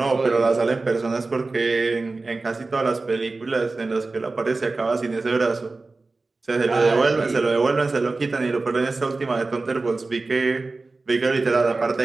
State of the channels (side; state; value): left; quieter; 3.6 dB